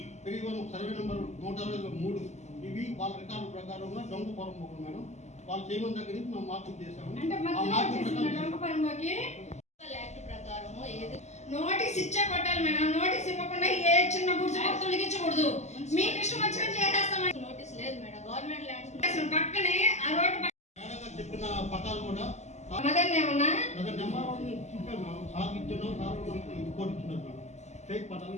31 సర్వే నెంబర్ 163 ఇవి వాళ్ళ రికార్డు ప్రకారంగా దొంగ పొరపోకు మేడం. వాళ్ళు చేయమని దగ్గర నుంచి మేము మార్కింగ్ చేసాము. అంటే ఆ మధ్యలో మార్కింగ్ వచ్చేసిన ప్రకారం డొంకపరమకి యాక్ట్ ప్రకారం ఏది నోటీస్ ఇచ్చే కొట్టాలి మేడం. నోటీస్ ఇవ్వకుండా ఏ చిన్న గుర్తు తొలగించకూడదు. మీకు ఇష్టం వచ్చినట్టు చేసేస్తామని నోటీస్ లేదు మేడం. గవర్నమెంట్ ల్యాండ్స్ అసలు పక్కనే ఆ రోడ్డు మేడం గారు చెప్పిన పట్టాలు కూడా మదన్ ఏమన్నా నెంబర్ చెప్పాను మేడం. సార్ ఇచ్చిన సార్ మనకి రిపోర్ట్ ఇచ్చినారు మేడం. ఫేక్ పట్టాలు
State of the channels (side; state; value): right; late; 0.33 ms